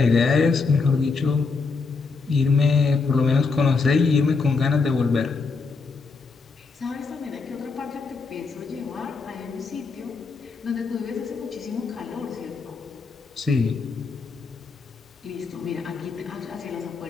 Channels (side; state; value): right; quieter; 4.5 dB